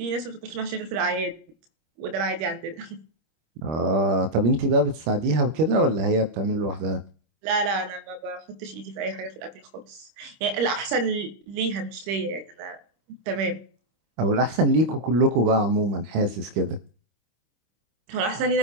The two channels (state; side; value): late; left; 26 ms